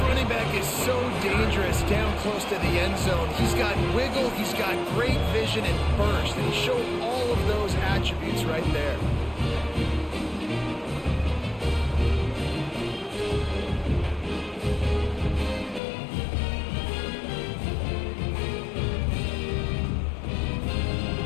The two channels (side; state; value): right; drops out; at 15.8 s